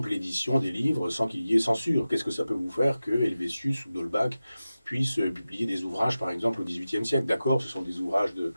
l'édition des livres sans qu'il y ait censure. Qu'est-ce que ça peut vous faire que Helvétius ou d'Holbach puissent publier des ouvrages par exemple au XVIIIe siècle? D'accord, ce sont des ouvrages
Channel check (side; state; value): both; inverted; correlation -0.94